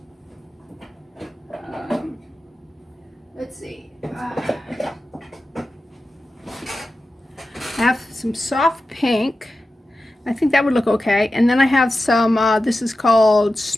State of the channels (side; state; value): both; normal; correlation 0.93